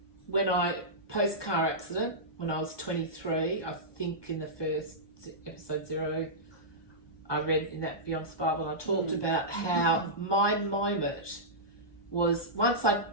when post car accident, when I was 23, I think in the first episode 0, I read in that Beyond Survival, I talked about how my moment was, once I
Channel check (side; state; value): right; late; 1.2 ms